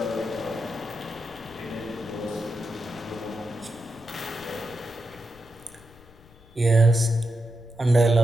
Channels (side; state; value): left; noise; rumble, 24 dB below the sound